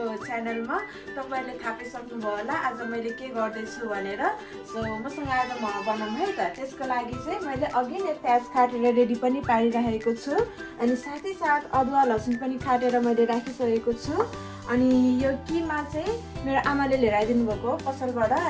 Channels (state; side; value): identical; both; correlation 1.00